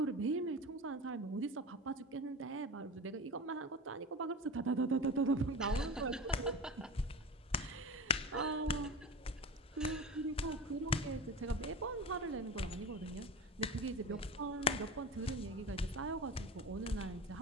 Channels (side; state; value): both; normal; correlation 0.28